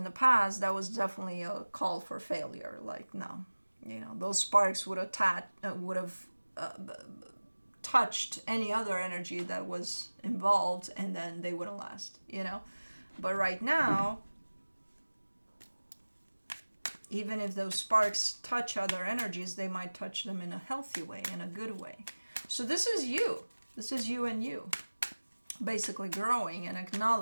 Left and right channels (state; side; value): inverted; both; correlation -1.00